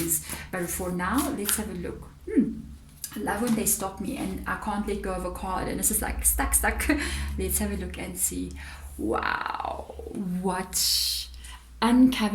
But for now, let's have a look. I love when they stop me and I can't let go of a card and it's just like stuck. Let's have a look and see. Wow, what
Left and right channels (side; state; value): both; identical; correlation 1.00